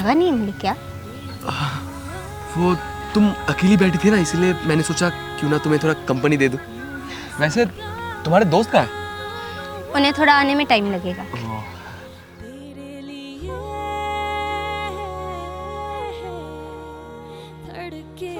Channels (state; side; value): identical; both; correlation 1.00